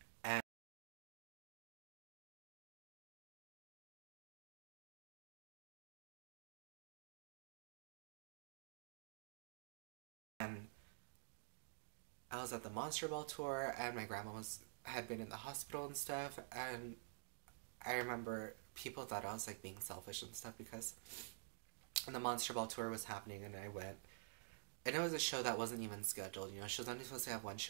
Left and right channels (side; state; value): left; silent; digital silence